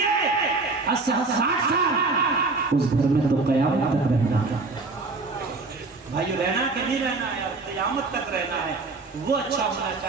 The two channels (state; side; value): quieter; left; 3.7 dB